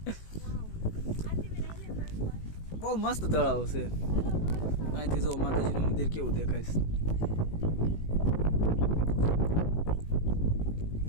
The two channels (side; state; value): right; late; 18 ms